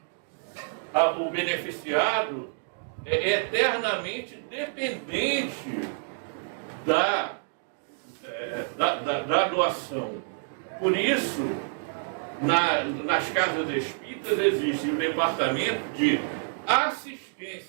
o beneficiado eternamente dependente da doação. Por isso, nas casas espíritas existe um departamento de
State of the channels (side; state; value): left; silent; digital silence